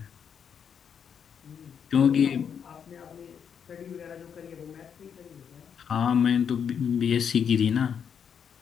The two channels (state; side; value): quieter; right; 7.5 dB